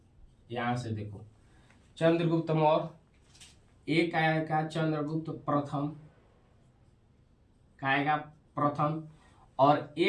यहां से देखो चंद्रगुप्त मौर्य। एक आएगा चंद्रगुप्त प्रथम, का आएगा प्रथम। और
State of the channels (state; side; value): identical; both; correlation 1.00